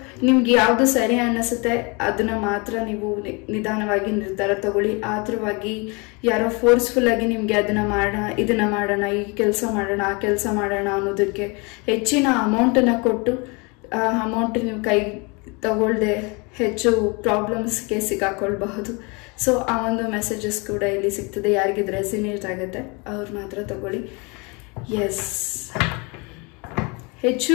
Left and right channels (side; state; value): right; quieter; 29.6 dB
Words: ನಿಮ್ಗೆ ಯಾವುದು ಸರಿ ಅನ್ನಿಸುತ್ತೆ ಅದನ್ನ ಮಾತ್ರ ನೀವು ನಿಧಾನವಾಗಿ ನಿರ್ಧಾರ ತಗೊಳ್ಳಿ. ಆತರವಾಗಿ ಯಾರೋ ಫೋರ್ಸ್ಫುಲ್ ಆಗಿ ನಿಮ್ಗೆ ಅದನ್ನ ಮಾಡೋಣ, ಇದನ್ನ ಮಾಡೋಣ, ಈ ಕೆಲಸ ಮಾಡೋಣ, ಆ ಕೆಲಸ ಮಾಡೋಣ ಅನ್ನೋದಕ್ಕೆ ಹೆಚ್ಚಿನ ಅಮೌಂಟನ್ನು ಕೊಟ್ಟು ಆ ಅಮೌಂಟ್ ನೀವು ಕೈ ತಗೊಳ್ದೆ ಹೆಚ್ಚು ಪ್ರಾಬ್ಲಮ್ಸ್ಗೆ ಸಿಕ್ಕಾಕೊಳ್ಬಹುದು. ಸೊ ಆ ಒಂದು ಮೆಸೇಜಸ್ ಕೂಡ ಇಲ್ಲಿ ಸಿಗ್ತದೆ. ಯಾರಿಗಿದ್ರೆ ರೆಸಿನೇಟ್ ಆಗುತ್ತೆ ಅವ್ರು ಮಾತ್ರ ತಗೊಳ್ಳಿ. ಎಸ್, ಹೆಚ್ಚು